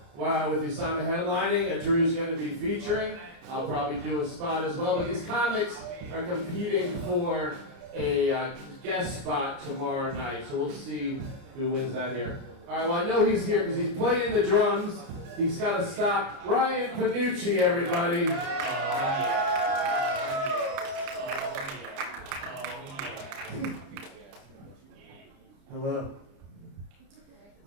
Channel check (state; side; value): late; left; 29 ms